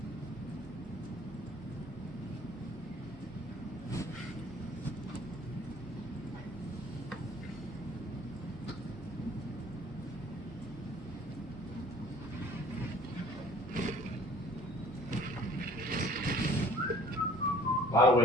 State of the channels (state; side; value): normal; both; correlation 0.52